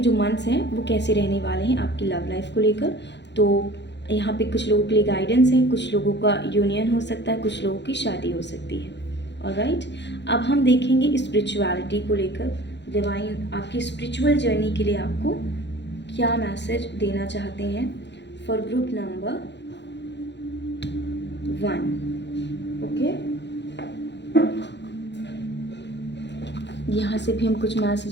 मंथ्स हैं वो कैसे रहने वाले हैं आपकी लव लाइफ को लेकर। तो यहाँ पे कुछ लोगों के लिए गाइडेंस है, कुछ लोगों का यूनियन हो सकता है, कुछ लोगों की शादी हो सकती है। ऑलराइट, अब हम देखेंगे स्पिरिचुअलिटी को लेकर। डिवाइन आपकी स्पिरिचुअल जर्नी के लिए आपको क्या मैसेज देना चाहते हैं फॉर ग्रुप नंबर 1, ओके। यहाँ से भी हम कुछ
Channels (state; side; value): late; right; 0.51 ms